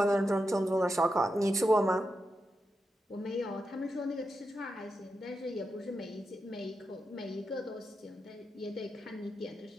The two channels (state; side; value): normal; both; correlation 0.87